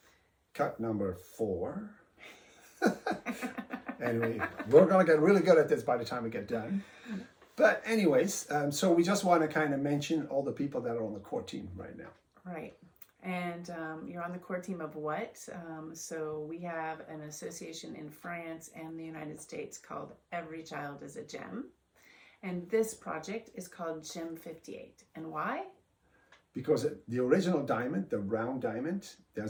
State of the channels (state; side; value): identical; both; correlation 1.00